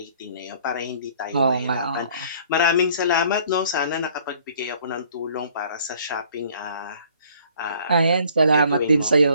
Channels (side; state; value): both; inverted; correlation -0.57